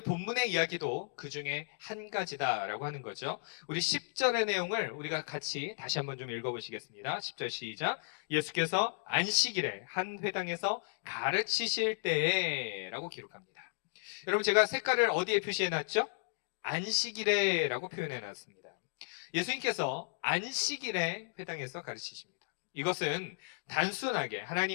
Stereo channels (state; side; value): silent; right; digital silence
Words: 본문의 이야기도 그 중에 한 가지다라고 하는 거죠. 우리 10절의 내용을 우리가 같이 다시 한번 좀 읽어보시겠습니다. 10절 시작. 예수께서 안식일에 한 회당에서 가르치실 때에 라고 기록합니다. 여러분, 제가 색깔을 어디에 표시해놨죠? 안식일에라고 표현해놨습니다. 예수님께서 안식일에 회당에서 가르치십니다. 이것은 단순하게